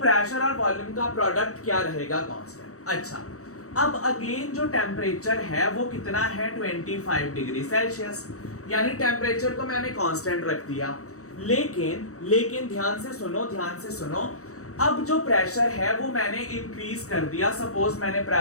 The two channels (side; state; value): right; late; 0.65 ms